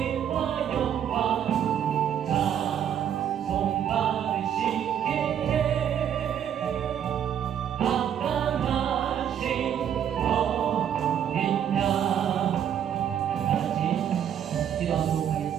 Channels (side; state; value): left; quieter; 9.3 dB